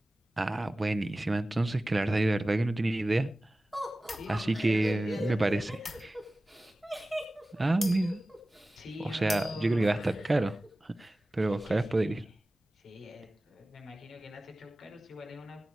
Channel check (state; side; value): normal; both; correlation 0.97